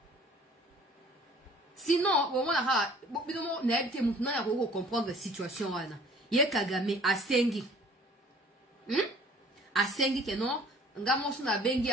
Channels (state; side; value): normal; both; correlation 0.51